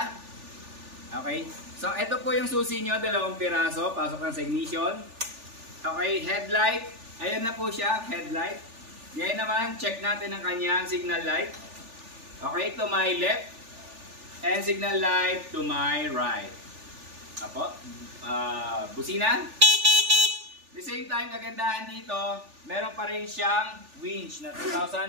Okay, so ito po yung susi nyo, 2 piraso. Pasok lang sa ignition. Okay, headlight. Ayan na po siya, headlight. Ngayon naman, check natin ang kanyang signal light. Okay, to my left. And signal light to my right. Apo, busina. The same time, kagandahan dito, meron pa rin siyang winch na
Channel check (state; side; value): late; left; 3.4 ms